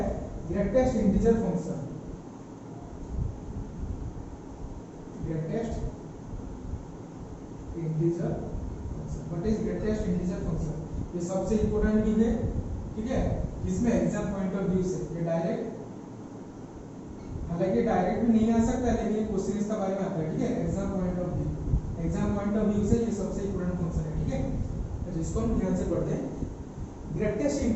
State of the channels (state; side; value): identical; both; correlation 1.00